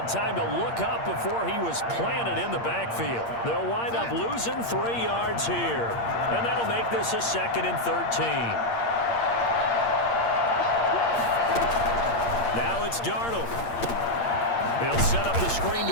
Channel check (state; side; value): late; right; 8.6 ms